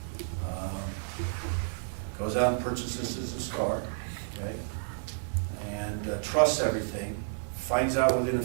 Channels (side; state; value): left; silent; digital silence